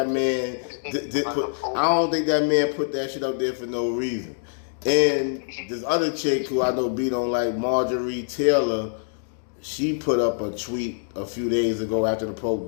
man I don't think that man put that shit up there for no reason. And this other chick who I know B don't like, Marjorie Taylor, she put up a tweet a few days ago after the Pope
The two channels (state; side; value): silent; right; digital silence